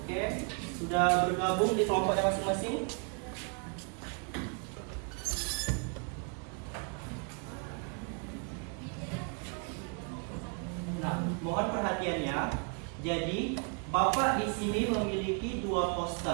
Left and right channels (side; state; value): left; quieter; 38.8 dB